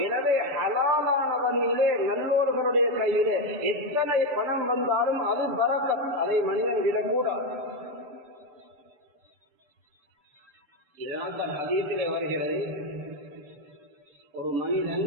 எனவே ஹலாலான வழியிலே நல்லோர்களுடைய கையிலே எத்தனை பணம் வந்தாலும் அது பரக்கத், அதை மனிதன் விடக்கூடாது. இதனால் தான் ஹதீஸிலே வருகிறது, ஒரு மனிதன்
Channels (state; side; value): late; left; 6.9 ms